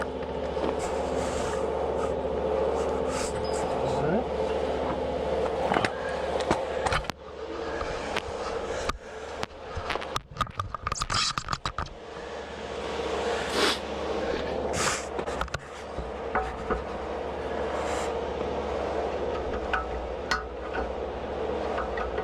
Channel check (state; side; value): identical; both; correlation 1.00